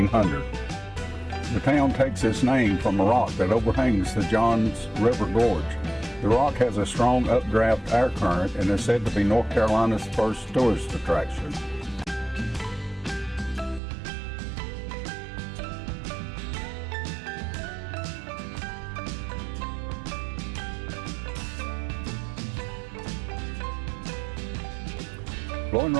The town takes its name from a rock that overhangs the Johns River Gorge. The rock has a strong updraft air current and is said to be North Carolina's first tourist attraction. Boone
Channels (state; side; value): drops out; left; at 13.8 s